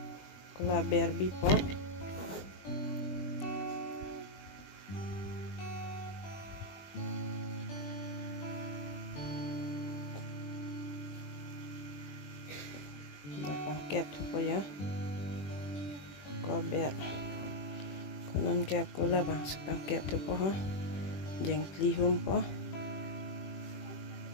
ko la berbi po la pangkep thu po ya ko ber ko non ke ko la bang pangkep thu po ha jeng kli hum po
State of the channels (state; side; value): late; right; 21 ms